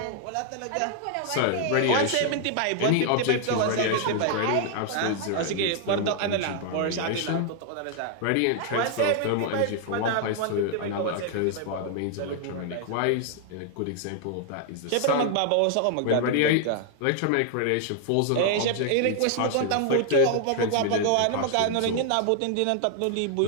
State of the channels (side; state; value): both; different; correlation 0.00